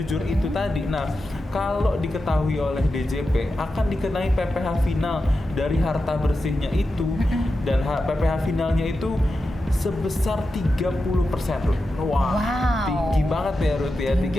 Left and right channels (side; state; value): both; normal; correlation 0.90